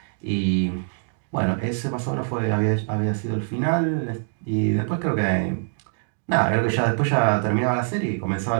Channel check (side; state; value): left; silent; digital silence